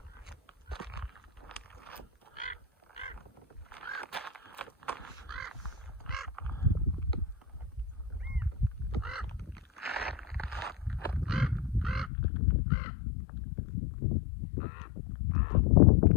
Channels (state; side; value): drops out; right; at 12.1 s